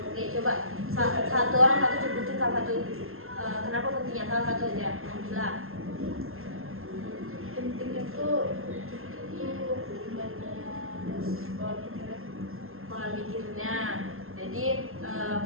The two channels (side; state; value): left; late; 0.61 ms